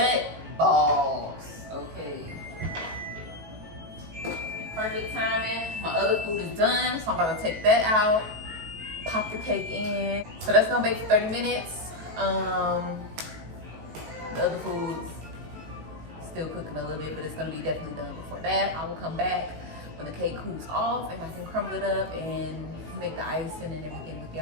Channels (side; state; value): left; late; 18 ms